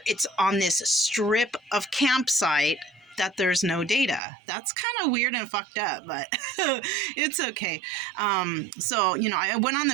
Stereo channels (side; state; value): left; drops out; at 4.2 s